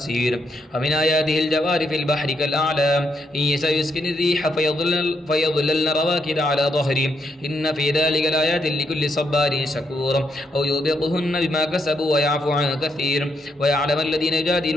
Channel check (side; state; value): both; normal; correlation 0.78